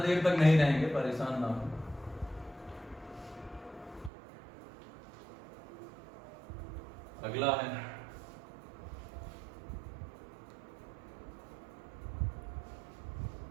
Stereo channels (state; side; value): drops out; left; at 4.1 s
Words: तक नहीं रहेंगे, परेशान ना हो। अगला है,